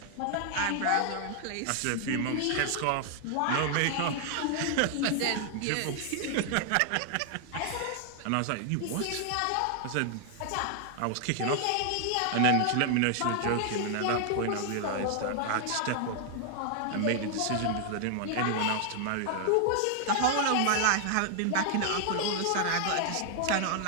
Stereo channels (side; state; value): both; different; correlation 0.00